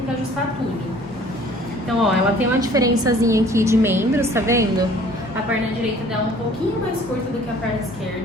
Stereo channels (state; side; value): normal; both; correlation 0.53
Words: que ajustar tudo. Então, ó, ela tem uma diferençazinha aqui de membros, tá vendo? A perna direita dela um pouquinho mais curta do que a perna